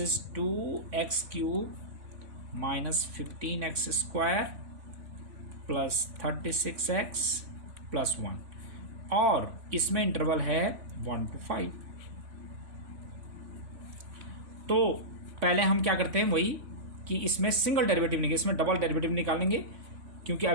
is 2x cube minus 15x square plus 36x plus 1, और इसमें इंटरवल है 1 to 5। तो पहले हम क्या करते हैं, वही कि इसमें सिंगल डेरिवेटिव निकालेंगे, इसमें डबल डेरिवेटिव निकालेंगे, क्योंकि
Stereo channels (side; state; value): left; late; 3.5 ms